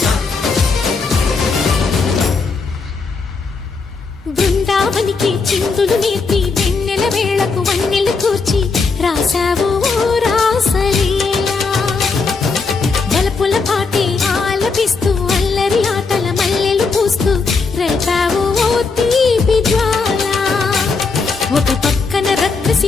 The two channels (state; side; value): quieter; right; 4.5 dB